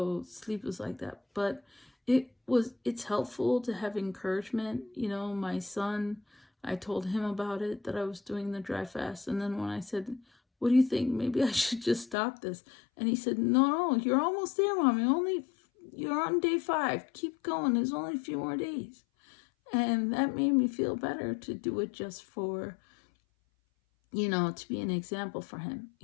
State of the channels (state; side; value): drops out; right; at 12.2 s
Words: sleep was like that. But it's helpful to have encouragement. My son, I told him about it, that I was doing the dry fast. And then when I said, what do you think? Maybe I should just stop this. And he said, no, you're almost there, Mommy. You're on day 5. Keep going. There's only a few more days. And that made me feel better to do it just for, to be an example for him,